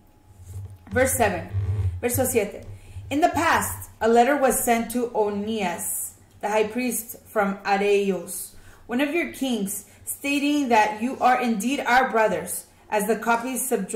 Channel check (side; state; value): both; identical; correlation 1.00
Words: Verse 7, verso 7. In the past, a letter was sent to Onias, the high priest from Areos, one of your kings, stating that you are indeed our brothers, as the copies